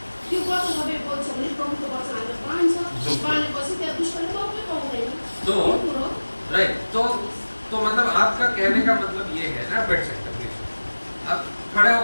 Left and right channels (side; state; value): both; inverted; correlation -1.00